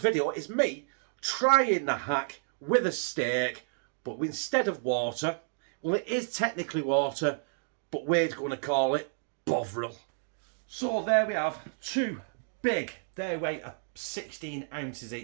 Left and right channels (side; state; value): left; silent; digital silence